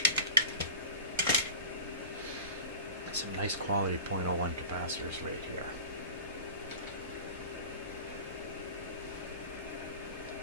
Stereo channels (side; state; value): both; inverted; correlation -0.36